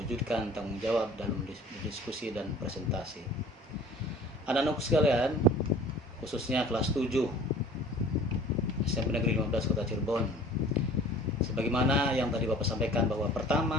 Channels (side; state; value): both; normal; correlation 0.46